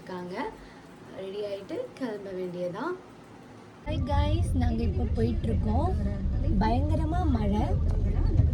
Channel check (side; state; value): both; identical; correlation 1.00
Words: ரெடி ஆகிட்டு கிளம்ப வேண்டியதான். ஹாய் காய்ஸ், நாங்கள் இப்போ போயிட்டுருக்கோம். பயங்கரமாக மழை.